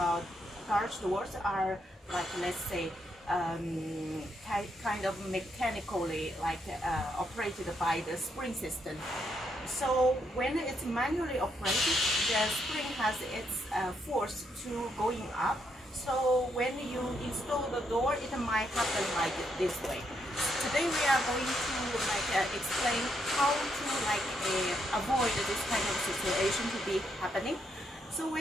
garage doors are like, let's say, kind of mechanically like operated by the spring system. So when it's manually operated, the spring has its force to going up. So when you install the door, it might happen like this way. Today we are going to explain how to avoid this kind of situation to be happening. So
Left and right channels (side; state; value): both; normal; correlation 0.77